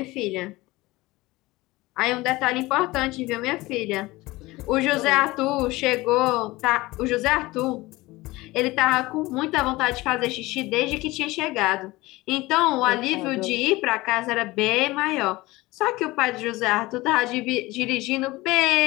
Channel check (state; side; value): quieter; right; 20.2 dB